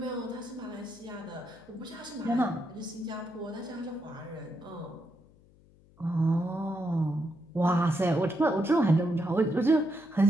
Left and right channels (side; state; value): left; noise; hum, 27 dB below the sound